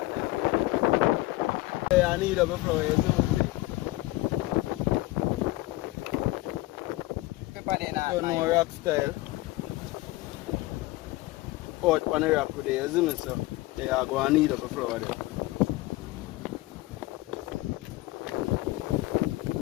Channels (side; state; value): right; quieter; 19.3 dB